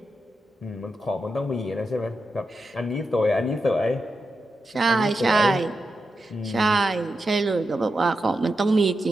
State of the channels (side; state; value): both; normal; correlation 0.88